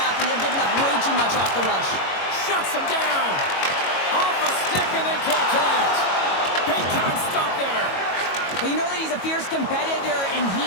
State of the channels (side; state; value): right; late; 22 ms